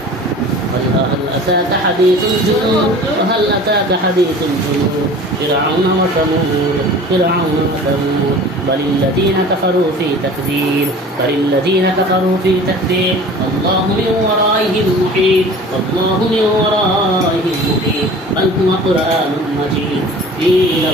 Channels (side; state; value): both; normal; correlation 0.42